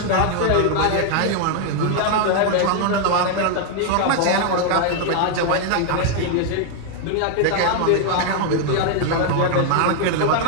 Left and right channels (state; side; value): different; both; correlation 0.00